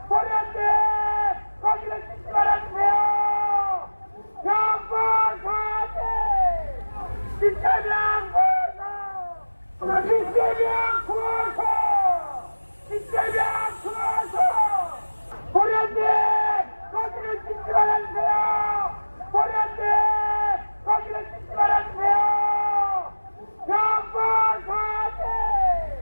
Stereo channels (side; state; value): both; inverted; correlation -1.00